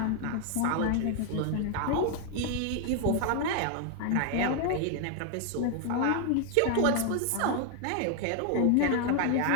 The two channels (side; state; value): both; different; correlation 0.00